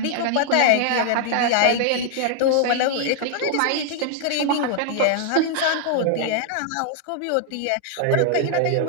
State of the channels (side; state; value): both; different; correlation 0.00